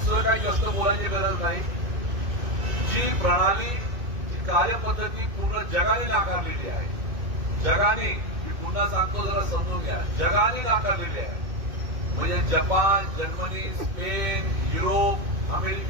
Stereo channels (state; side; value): late; left; 2.6 ms